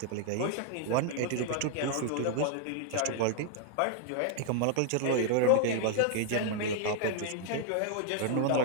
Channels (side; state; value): both; different; correlation 0.00